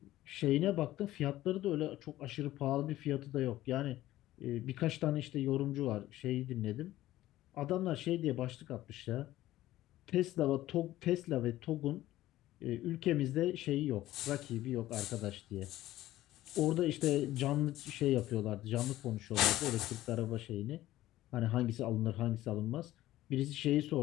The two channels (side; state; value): right; quieter; 15.2 dB